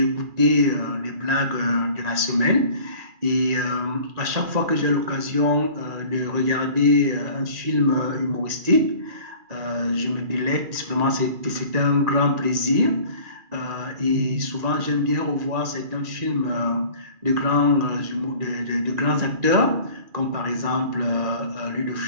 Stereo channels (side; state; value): left; late; 2.4 ms